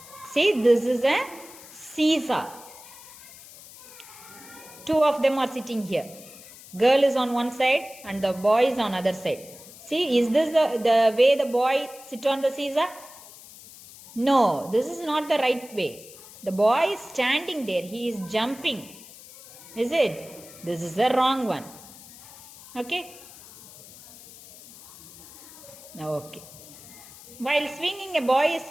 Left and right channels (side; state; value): left; noise; hiss, 19 dB below the sound